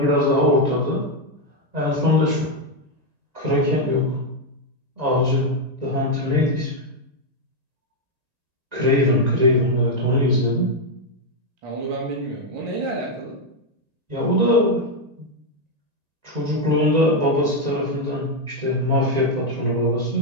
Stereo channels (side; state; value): left; late; 1.9 ms